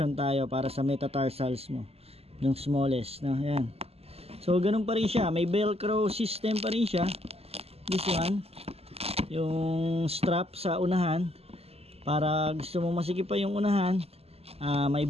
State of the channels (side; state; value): left; late; 0.29 ms